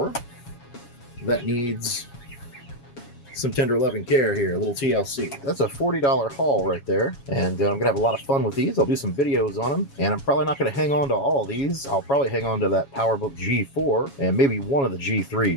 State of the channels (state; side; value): late; right; 7.2 ms